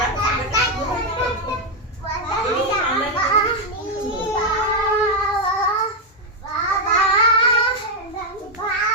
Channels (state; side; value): normal; both; correlation 0.02